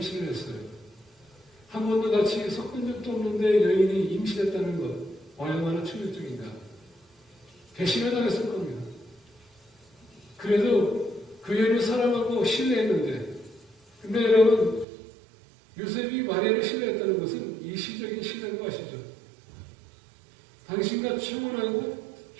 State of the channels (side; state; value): left; drops out; at 14.9 s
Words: 했어요. 한 번도 같이 섞은 적도 없는데 여인이 임신했다는 것. 얼마나 충격적인가. 배신을 당했을 겁니다. 그래도 그 여인을 사랑하고 신뢰했는데, 근데 여러분, 요셉이 마리아를 신뢰했다는 것은 일시적인 신뢰인 거 아시죠? 당신과 청혼하고